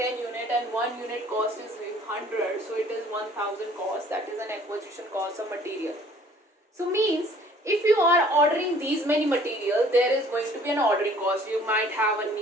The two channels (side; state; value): both; normal; correlation 0.55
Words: unit and 1 unit cost is 100, so it is 1000 cost, that is an acquisition cost of material. So means if you are ordering these many material, there is going to be an ordering cost. You might have a